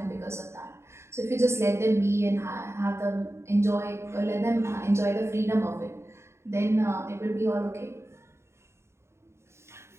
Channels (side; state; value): left; late; 0.13 ms